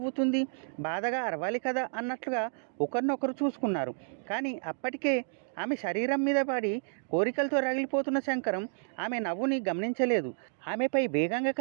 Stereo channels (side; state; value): left; silent; digital silence